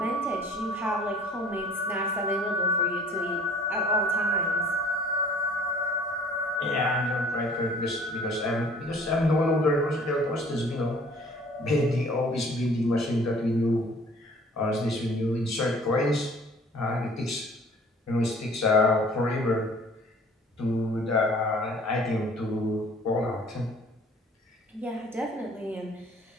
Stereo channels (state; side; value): normal; both; correlation 0.52